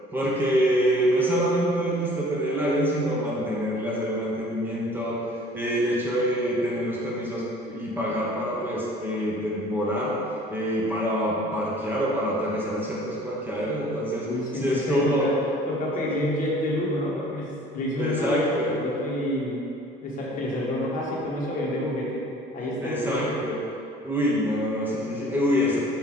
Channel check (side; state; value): both; normal; correlation 0.51